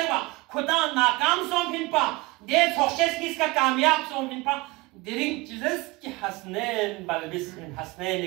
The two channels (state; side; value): quieter; left; 22.6 dB